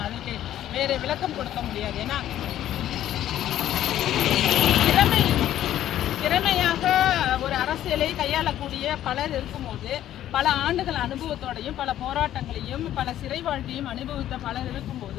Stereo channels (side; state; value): right; quieter; 12.2 dB